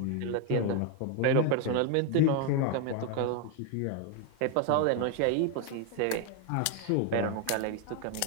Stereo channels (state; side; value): different; both; correlation 0.01